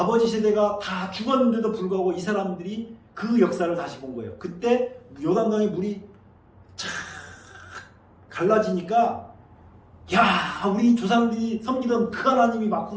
세대가 다 죽었는데도 불구하고 이 사람들이 그 역사를 다시 본 거예요. 그때 요단강의 물이 쫙 갈라지니까 야, 우리 조상들이 섬기던 그 하나님이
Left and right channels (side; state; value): both; identical; correlation 1.00